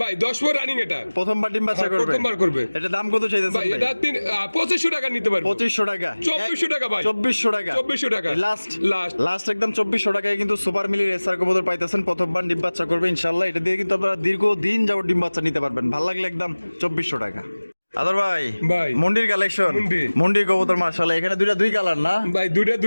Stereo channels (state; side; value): inverted; both; correlation -1.00